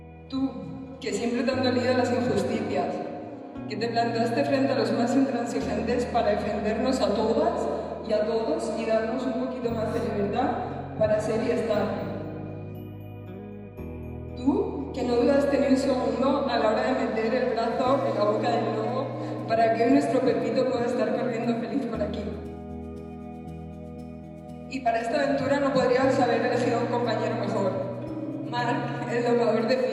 Tú, que siempre te han dolido las injusticias, que te plantaste frente a los más intransigentes para defendernos a todas y a todos y darnos un poquito más de libertad para ser y estar. Tú, que no dudaste ni un segundo a la hora de meter el brazo en la boca del lobo para que hoy nuestro Pepito pueda estar corriendo feliz por aquí. Y para esta aventura no podrías haber elegido un compañero mejor. Marc, el domador de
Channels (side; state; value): both; identical; correlation 1.00